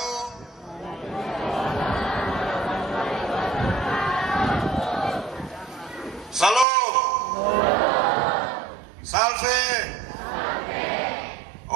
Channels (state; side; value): drops out; left; at 6.7 s